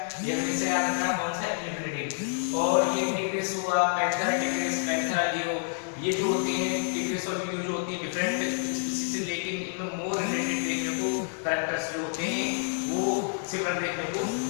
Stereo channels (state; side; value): silent; right; 59 dB below the other